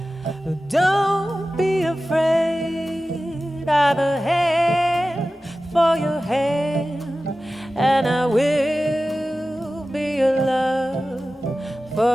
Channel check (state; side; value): normal; both; correlation 0.95